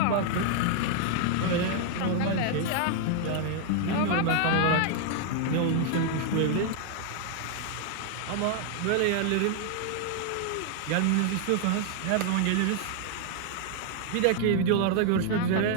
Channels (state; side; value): different; both; correlation 0.00